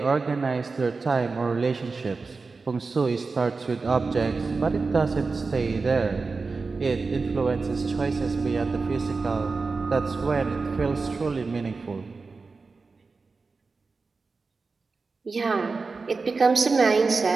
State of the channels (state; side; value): quieter; left; 4.2 dB